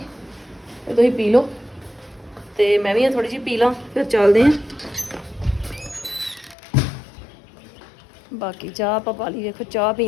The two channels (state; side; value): drops out; right; at 6.6 s